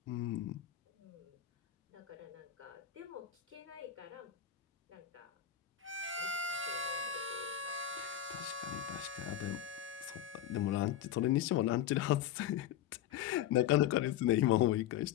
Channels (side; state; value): right; quieter; 10.8 dB